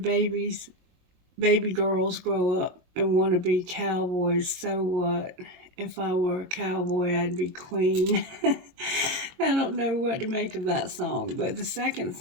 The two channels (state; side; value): late; left; 22 ms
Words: girls grow up and want to be cowboys, so what? If I were a cowboy, I'd be queen. I don't know what to make of that song, but the second